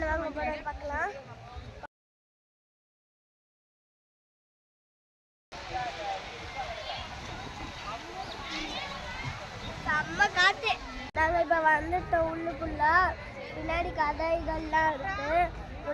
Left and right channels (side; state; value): both; identical; correlation 1.00